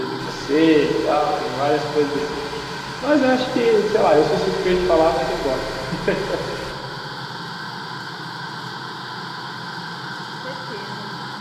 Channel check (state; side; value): identical; both; correlation 1.00